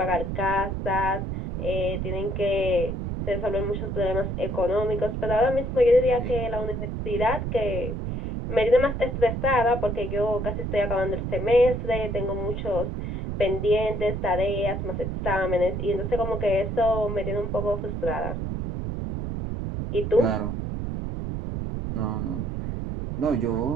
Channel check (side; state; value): right; noise; rumble, 3 dB below the sound